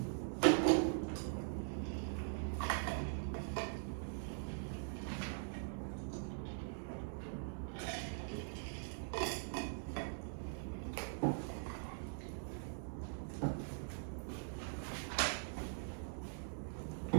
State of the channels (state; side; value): silent; left; digital silence